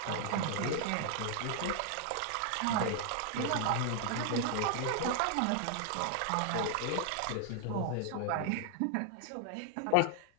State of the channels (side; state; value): both; different; correlation 0.00